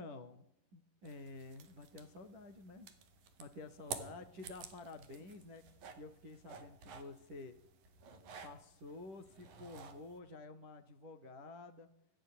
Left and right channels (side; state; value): left; late; 11 ms